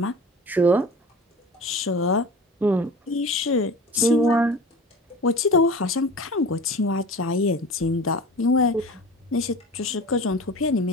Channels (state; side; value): normal; both; correlation 0.36